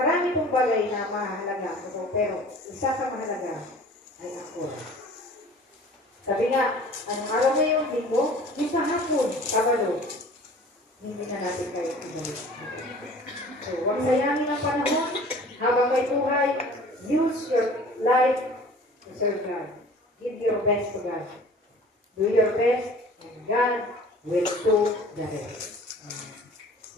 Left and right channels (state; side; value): normal; both; correlation 0.46